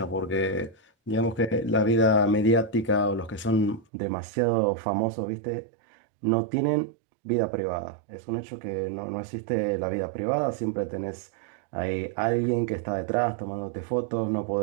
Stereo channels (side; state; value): left; drops out; at 3.9 s